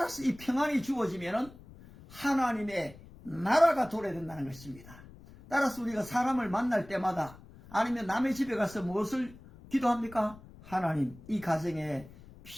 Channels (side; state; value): left; noise; rumble, 20 dB below the sound